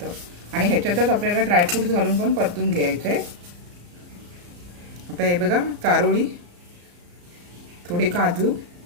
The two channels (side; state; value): left; late; 34 ms